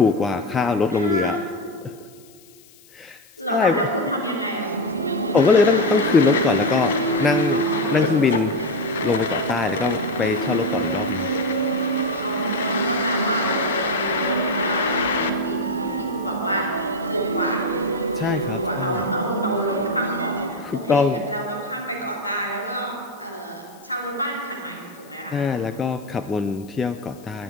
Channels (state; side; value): noise; left; hiss, 26 dB below the sound